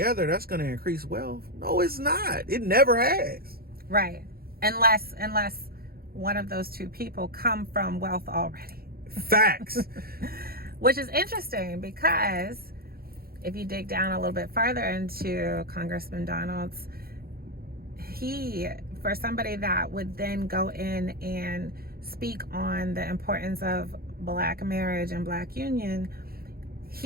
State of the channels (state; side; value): late; left; 0.44 ms